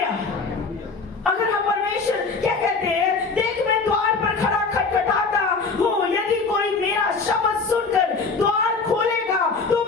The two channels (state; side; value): quieter; right; 4.4 dB